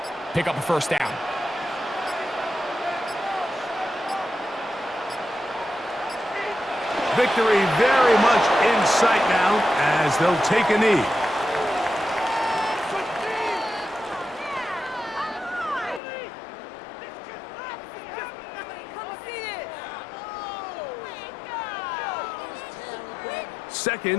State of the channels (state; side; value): drops out; right; at 16.0 s